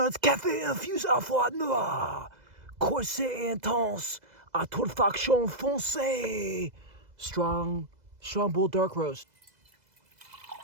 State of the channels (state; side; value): late; left; 2.0 ms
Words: as café infusé à froid noir. Corsé intense. À torréfaction foncée. Strong bull dark roast.